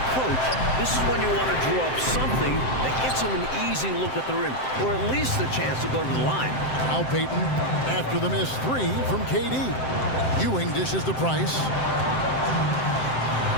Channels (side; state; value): right; late; 7.7 ms